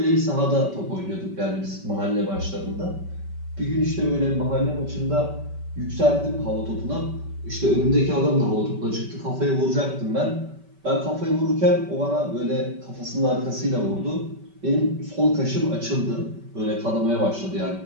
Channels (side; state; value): left; late; 5.2 ms